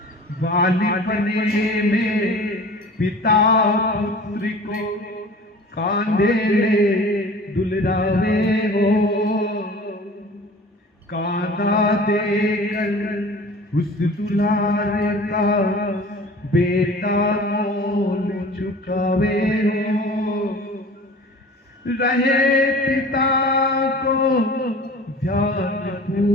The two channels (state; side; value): normal; both; correlation 0.42